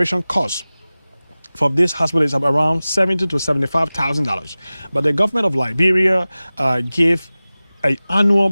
cost for this hospital is around $70,000 to $75,000. But the government of Liberia gave an annual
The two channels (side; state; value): both; inverted; correlation -0.97